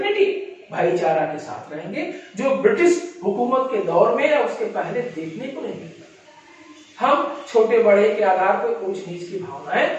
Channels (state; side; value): identical; both; correlation 1.00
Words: भाईचारा के साथ रहेंगे, जो ब्रिटिश हुकूमत के दौर में या उसके पहले देखने को नहीं मिलता। हम छोटे बड़े के आधार पर ऊंच नीच की भावनाएं